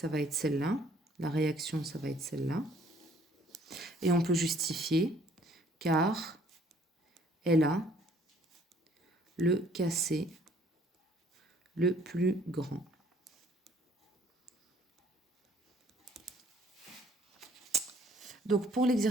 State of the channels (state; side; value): normal; both; correlation 0.59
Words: va être celle-là. La réaction, ça va être celle-là. Et on peut justifier car elle a le Kc le plus grand. Donc pour